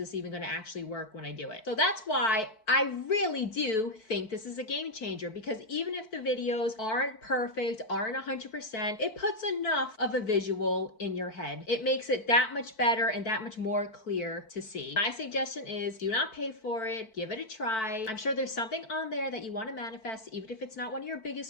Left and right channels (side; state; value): right; late; 4.5 ms